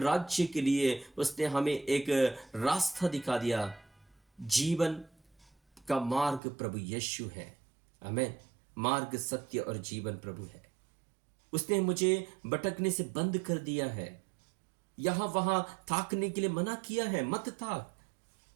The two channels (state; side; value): drops out; left; at 6.4 s